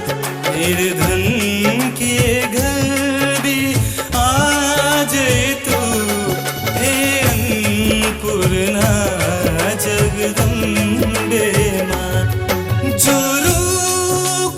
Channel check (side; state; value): both; identical; correlation 1.00